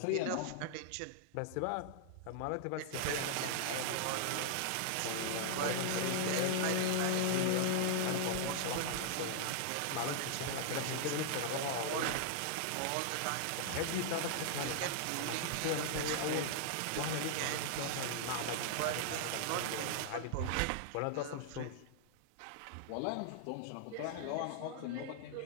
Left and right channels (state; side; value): different; both; correlation -0.01